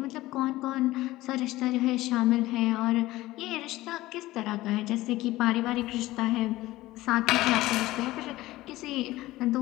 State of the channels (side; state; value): right; quieter; 17.4 dB